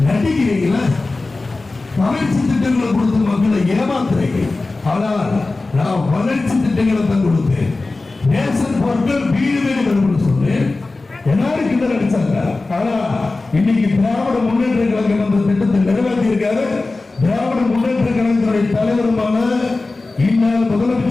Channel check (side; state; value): right; quieter; 3.4 dB